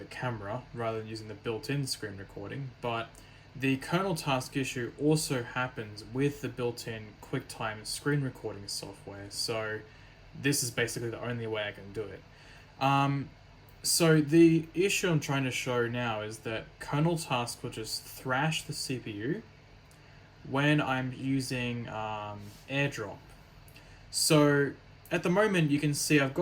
a camera rather than using the built-in screen recording, but the kernel task issue also happens with the built-in QuickTime screen recording software, so this is basically the only way I can do it. So the issue I'm trying to show now is that kernel task will just thrash the CPU when I'm using AirDrop. So at the moment, you can see I've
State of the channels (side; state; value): both; identical; correlation 1.00